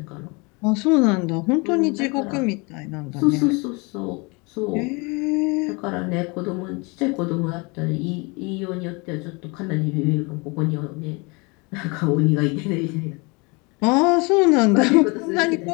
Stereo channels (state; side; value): quieter; right; 28.8 dB